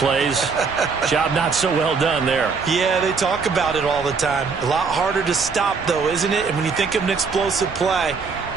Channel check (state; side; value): quieter; left; 5.0 dB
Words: Job not so well done there. Yeah, they talk about it all the time. A lot harder to stop, though, isn't it? And when you think of an explosive play,